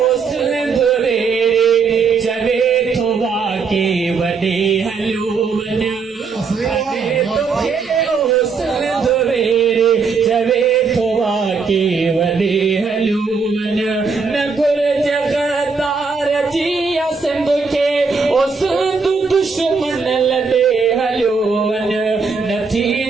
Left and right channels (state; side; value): quieter; left; 4.9 dB